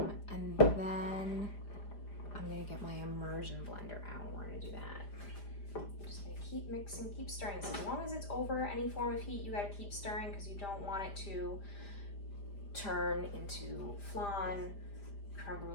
And then I'm gonna get my immersion blender out. We're gonna do that. Just gonna keep mixing, keep stirring. So as long as it's over any form of heat, you gotta keep stirring because you don't want it to turn into flan, creme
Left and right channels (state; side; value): late; right; 5.0 ms